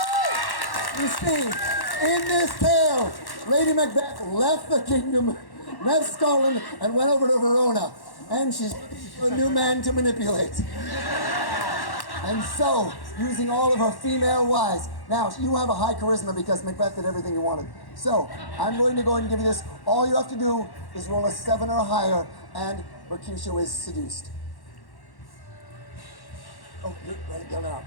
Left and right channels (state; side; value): late; right; 1.1 ms